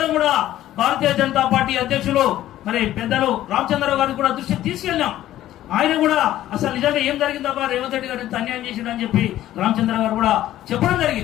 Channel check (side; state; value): right; quieter; 13.5 dB